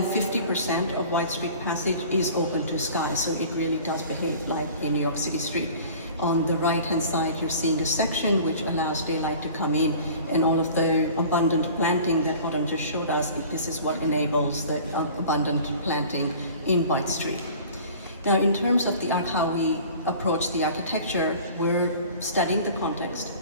50% of White Street Passage is open to sky, so it really does behave like a New York City street. On the right-hand side, you're seeing a section which allows daylight to come in, and all of the abundant planting that Autumn just showed us, this is what enables the abundant planting in White Street. Now, in terms of how we approach the architecture, we're studying the context,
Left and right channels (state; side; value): inverted; both; correlation -0.44